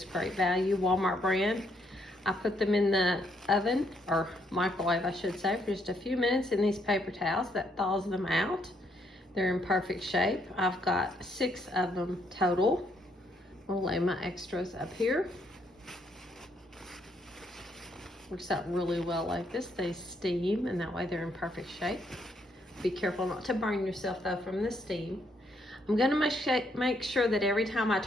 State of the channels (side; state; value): both; normal; correlation 0.73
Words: great value, Walmart brand. I put them in the oven, or microwave I should say, for just a few minutes in these paper towels. That thaws them out. They're in perfect shape. I've got 6 of them total. I'll lay my extras up here. Works out really well like this. They steam and that way they're in perfect shape. Be careful not to burn yourself though from the steam. I'm gonna make sure that every time I